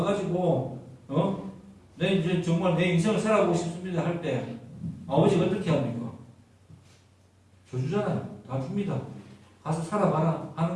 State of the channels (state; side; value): identical; both; correlation 1.00